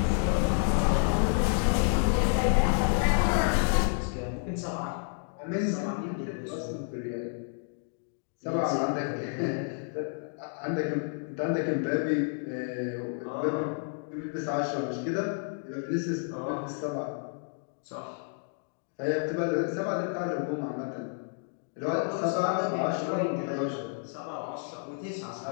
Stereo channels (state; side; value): silent; right; 58 dB below the other